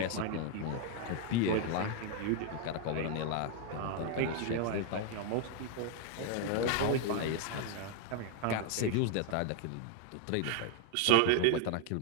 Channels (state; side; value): different; both; correlation 0.00